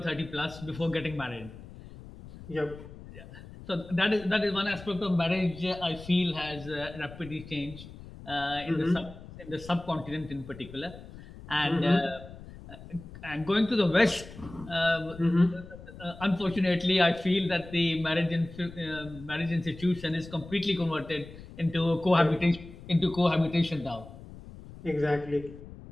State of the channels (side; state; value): left; noise; rumble, 16 dB below the sound